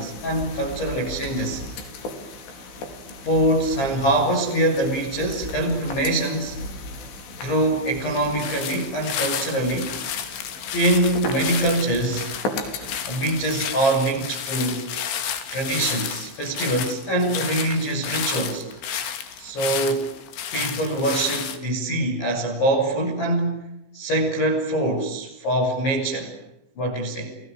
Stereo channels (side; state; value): right; late; 15 ms